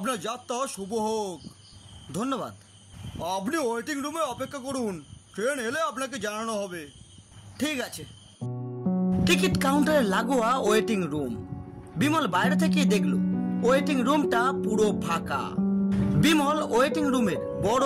যাত্রা শুভ হোক। ধন্যবাদ। আপনি ওয়েটিং রুমে অপেক্ষা করুন, ট্রেন এলে আপনাকে জানানো হবে। ঠিক আছে। টিকিট কাউন্টারে লাগোয়া ওয়েটিং রুম। বিমল বাইরে থেকে দেখলো ওয়েটিং রুমটা পুরো ফাঁকা। বিমল ওয়েটিং রুমের বড়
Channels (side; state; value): both; identical; correlation 1.00